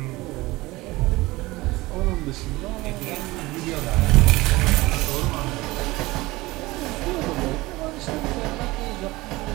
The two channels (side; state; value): left; quieter; 20.3 dB